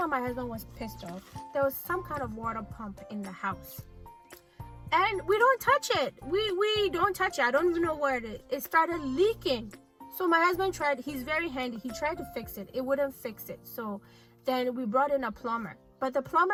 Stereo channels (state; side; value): identical; both; correlation 1.00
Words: my husband was pissed off, there was some kind of water pump in the house. And we don't touch it. We don't touch it. I don't even know where it is. It started leaking. So my husband tried, he's very handy. He tried to fix it. It wouldn't fix it. So then we brought in a plumber. But the